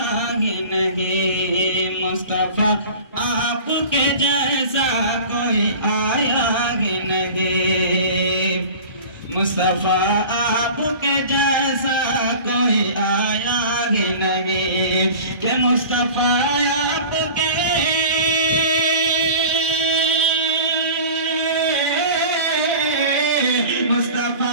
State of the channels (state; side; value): inverted; both; correlation -0.39